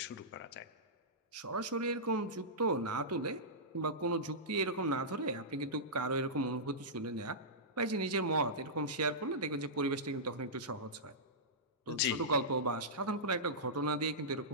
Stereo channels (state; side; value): normal; both; correlation -0.16